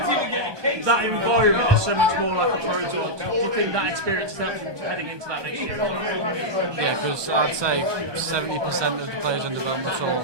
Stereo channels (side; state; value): left; late; 1.2 ms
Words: That environment is so much more like a Pro Tour. Do you think that experience helps you heading into that next year? Yeah, because I'd say 70% of the players on Developmental